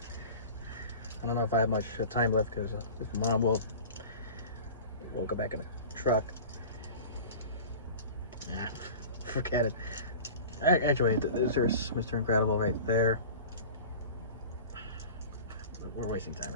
I don't know if I have much time left, because if Mom will go back in the truck. Nah, forget it. Actually, there's Mr. Incredible right there. We're wasting time,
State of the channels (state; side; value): inverted; both; correlation -0.37